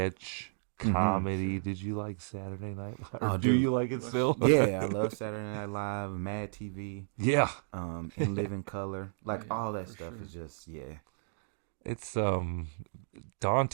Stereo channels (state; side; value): silent; left; digital silence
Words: comedy. Mm-hmm. Did you like Saturday Night Live? Oh, do you like it still? Yeah, I love Saturday Night Live, Mad TV. Yeah, In Living Color, all that stuff is just It's